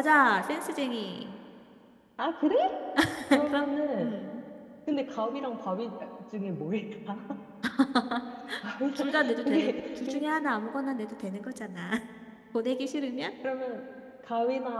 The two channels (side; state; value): both; identical; correlation 1.00